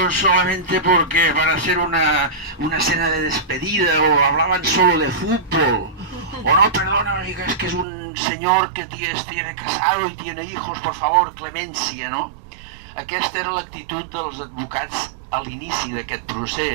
solamente porque para hacer una cena de despedida o hablaban solo de fútbol. O no, perdona, es que es un señor que tiene casado y tiene hijos, por favor, clemencia, no? Aquesta era l'actitud dels advocats a l'inici d'aquest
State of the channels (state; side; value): drops out; left; at 7.9 s